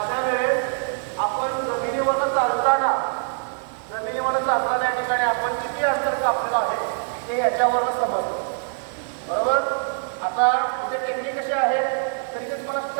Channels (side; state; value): left; silent; 63 dB below the other